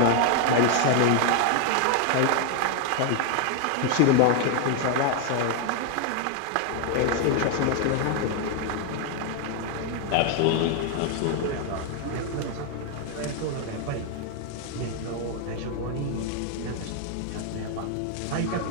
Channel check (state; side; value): different; both; correlation 0.00